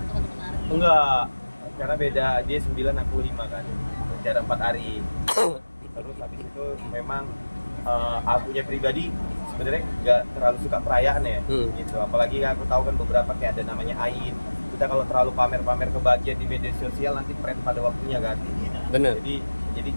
Arif? Enggak, karena beda. Dia 9, aku 5 kan. Jarak 4 hari. Terus habis itu memang akunya pribadi sebenarnya nggak terlalu suka perayaan ya, gitu. Apalagi aku tahu kan beberapa kayak ada namanya Ain. Kita kalau terlalu pamer-pamer kebahagiaan di media sosial nanti tren pada waktunya kan. Bener. Jadi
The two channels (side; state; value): both; inverted; correlation -1.00